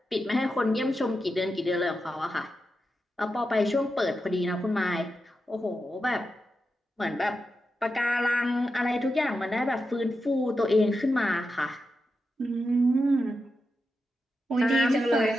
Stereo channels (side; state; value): both; normal; correlation 0.88